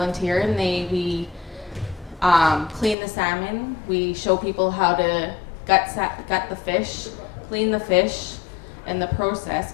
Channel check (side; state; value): right; drops out; at 3.0 s